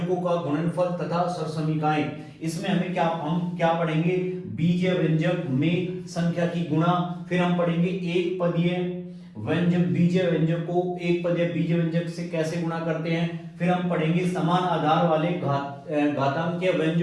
का गुणनफल तथा स्वर समीकरणें। इसमें हम क्या पढ़ेंगे, बीजीय व्यंजक में संख्या की गुणा, फिर हम पढ़ेंगे एक पदीय व्यंजक, बीजीय व्यंजक को एक पदीय बीजीय व्यंजक से कैसे गुणा करते हैं, फिर हम पढ़ेंगे समान आधार वाले घातांकीय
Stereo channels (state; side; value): identical; both; correlation 1.00